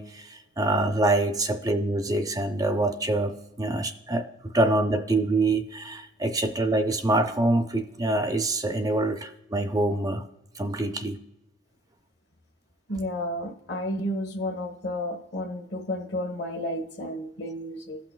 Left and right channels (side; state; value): both; normal; correlation 0.56